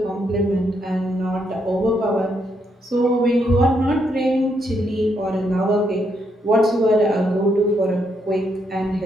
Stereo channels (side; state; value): both; normal; correlation 0.77